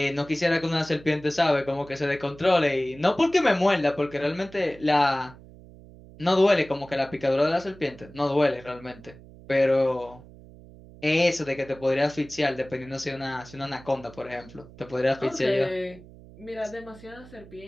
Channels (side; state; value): right; noise; hum, 20 dB below the sound